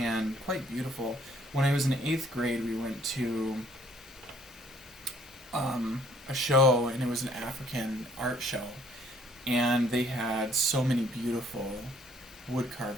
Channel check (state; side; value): normal; both; correlation 0.61